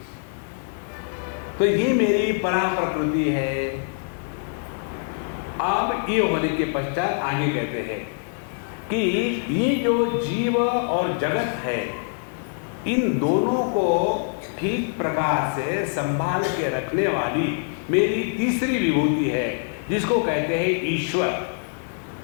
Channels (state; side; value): silent; right; digital silence